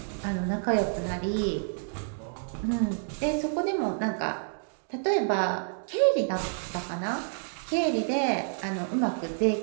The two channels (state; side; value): silent; left; digital silence